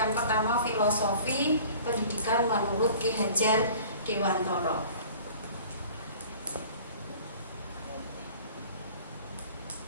pertama filosofi pendidikan menurut Ki Hajar Dewantara.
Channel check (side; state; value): both; inverted; correlation -0.47